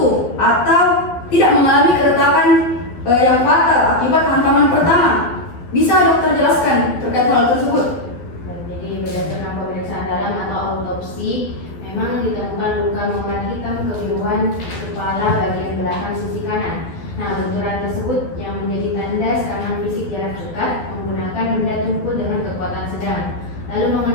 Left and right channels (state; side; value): late; right; 12 ms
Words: atau tidak mengalami keretakan yang fatal akibat hantaman pertama. Bisa dokter jelaskan terkait hal tersebut? Jadi berdasarkan pemeriksaan dalam atau autopsi, memang ditemukan luka memar hitam kebiruan kepala bagian belakang sisi kanan. Nah, benturan tersebut yang menjadi tanda serangan fisik jarak dekat menggunakan benda tumpul dengan kekuatan sedang. Lalu